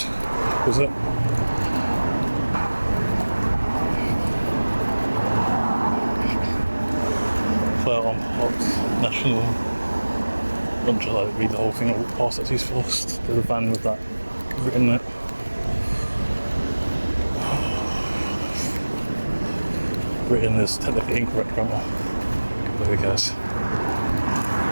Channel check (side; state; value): both; inverted; correlation -1.00